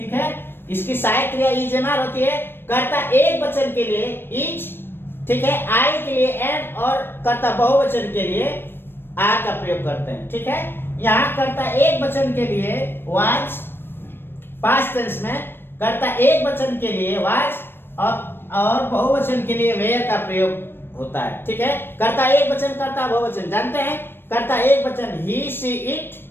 है, इसकी सहायक क्रिया इज एम आर होती है। कर्ता एक वचन के लिए इज, ठीक है, आई के लिए एम, और कर्ता बहुवचन के लिए आर का प्रयोग करते हैं, ठीक है। यहाँ कर्ता एक वचन के लिए वाज, पास्ट टेंस में कर्ता एक वचन के लिए वाज और बहुवचन के लिए वेयर का प्रयोग होता है, ठीक है। कर्ता एक वचन, कर्ता बहुवचन जानते हैं, कर्ता एक वचन ही सी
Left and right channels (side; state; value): right; late; 0.10 ms